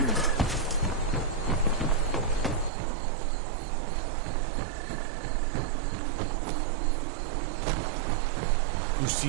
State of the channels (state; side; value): drops out; left; at 2.7 s